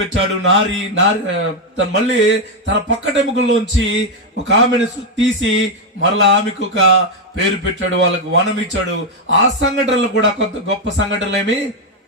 నారి. మళ్ళీ తన పక్కటెముకల్లోంచి ఒక ఆమెను తీసి మరలా ఆమెకు ఒక పేరు పెట్టాడు, వాళ్ళకు వనం ఇచ్చాడు. ఆ సంఘటనలు కూడా కొంత గొప్ప సంఘటనలు ఏమి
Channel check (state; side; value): normal; both; correlation 0.02